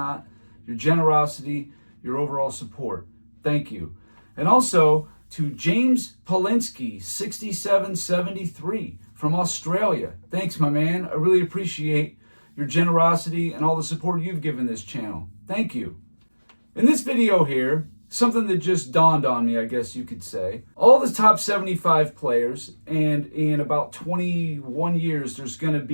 your generosity, your overall support. Thank you. And also to James Polinsky, 6773 from Australia. Thanks, my man. I really appreciate your generosity and all the support you've given this channel. Thank you. In this video here, something that just dawned on me, I guess you could say. All the top 75 players, and in about 21 years, there's going to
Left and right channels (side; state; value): both; inverted; correlation -1.00